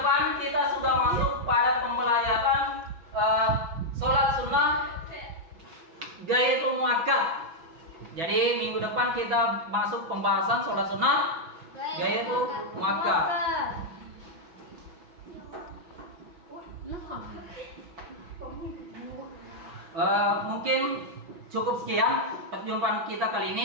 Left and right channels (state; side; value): late; left; 6.2 ms